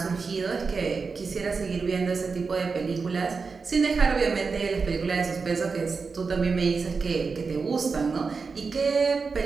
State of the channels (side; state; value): left; quieter; 4.8 dB